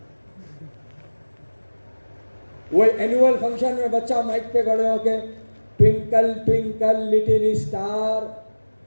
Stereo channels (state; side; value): inverted; both; correlation -1.00